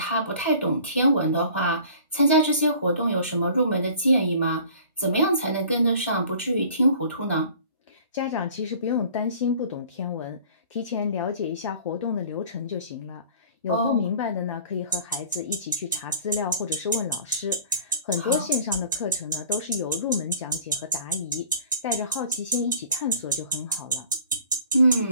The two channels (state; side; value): inverted; both; correlation -0.47